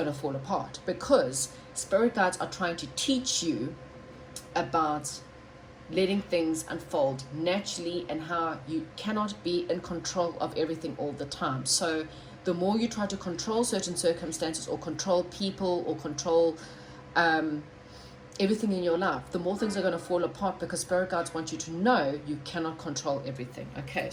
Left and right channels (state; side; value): identical; both; correlation 1.00